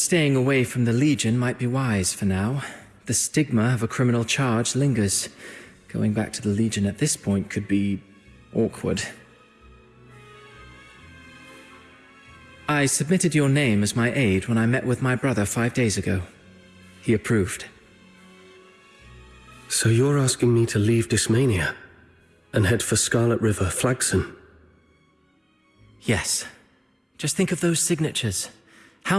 away from the Legion might be wise for now. The stigma of a criminal charge lingers. Going back to the Legion at this point could be awkward. I submitted your name as my aide when I met with my brother 5 days ago. He approved. So you're asking me to leave Dysmania and head for Scarlet River, Flagson? Yes. Just think of those signatures.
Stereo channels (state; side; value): identical; both; correlation 1.00